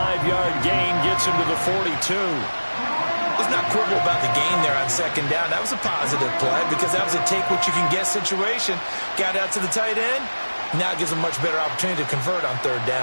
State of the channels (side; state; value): both; inverted; correlation -1.00